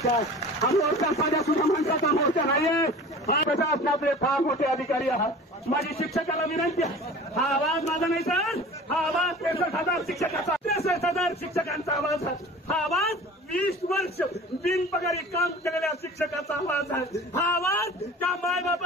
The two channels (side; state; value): both; normal; correlation 0.41